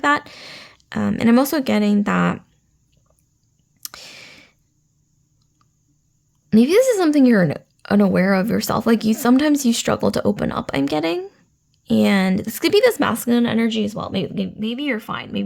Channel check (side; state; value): both; identical; correlation 1.00